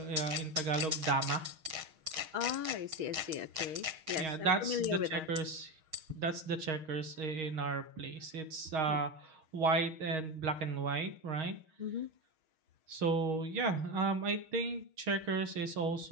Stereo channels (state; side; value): late; left; 6.4 ms